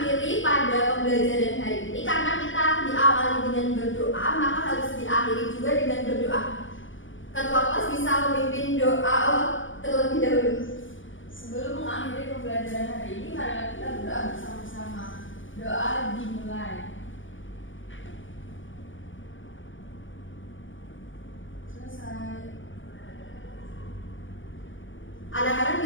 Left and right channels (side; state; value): right; late; 0.56 ms